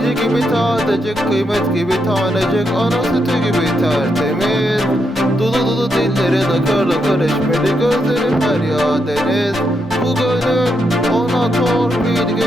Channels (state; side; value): normal; both; correlation 0.81